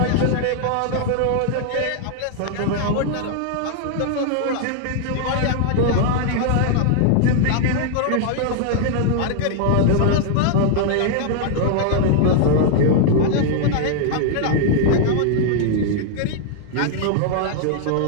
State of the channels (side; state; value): both; different; correlation 0.00